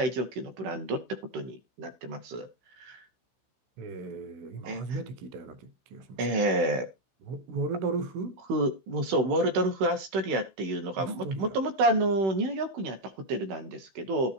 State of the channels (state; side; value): late; left; 16 ms